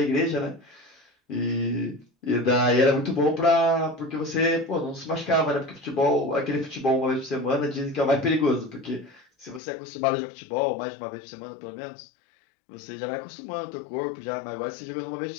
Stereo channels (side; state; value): right; drops out; at 9.6 s